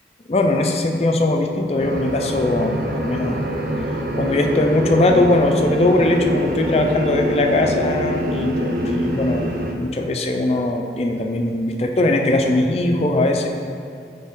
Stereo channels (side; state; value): both; normal; correlation 0.59